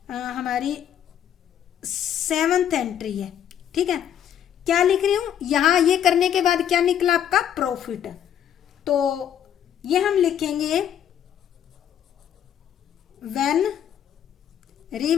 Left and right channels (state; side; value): quieter; right; 9.8 dB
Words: हमारी 7th एंट्री है, ठीक है। क्या लिख रही हूँ, यहाँ ये करने के बाद क्या निकला आपका, प्रॉफिट। तो ये हम लिखेंगे व्हेन